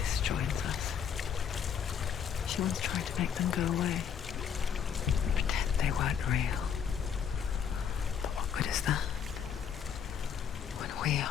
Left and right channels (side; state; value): right; quieter; 7.7 dB